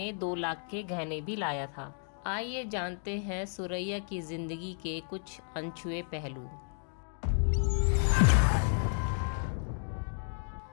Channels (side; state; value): right; silent; 56 dB below the other